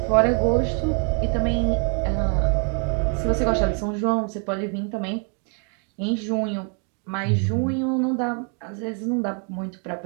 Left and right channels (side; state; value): left; quieter; 39.9 dB